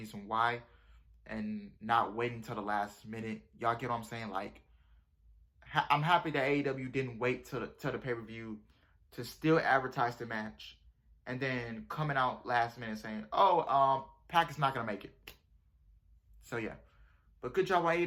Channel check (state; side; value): identical; both; correlation 1.00